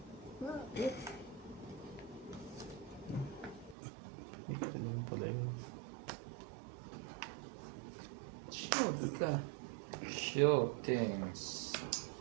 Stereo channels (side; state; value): left; drops out; at 3.8 s